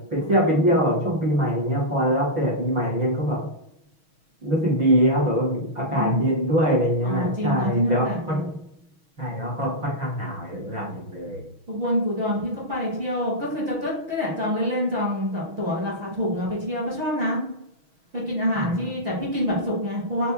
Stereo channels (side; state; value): left; late; 6.3 ms